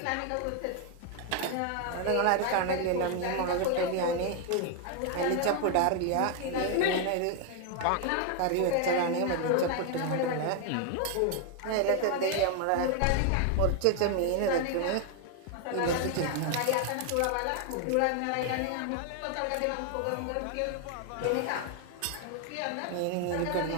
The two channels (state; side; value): different; both; correlation 0.01